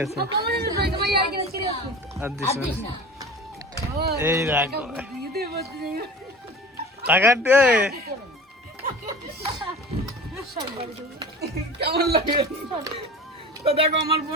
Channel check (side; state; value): both; normal; correlation 0.37